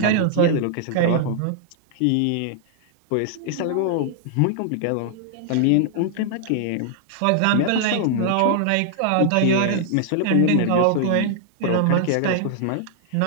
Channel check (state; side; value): different; both; correlation 0.00